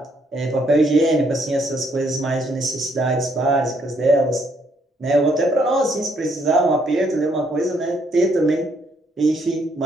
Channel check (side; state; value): both; normal; correlation 0.70